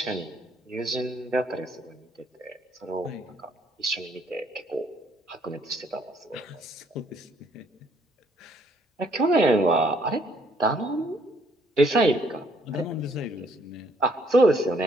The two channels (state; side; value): normal; both; correlation 0.66